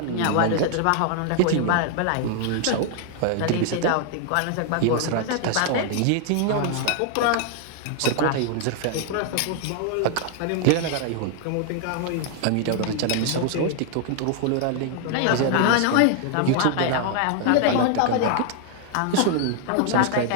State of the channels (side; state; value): both; different; correlation 0.00